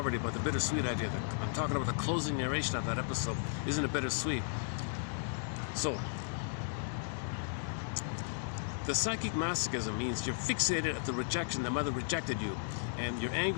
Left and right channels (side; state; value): right; silent; digital silence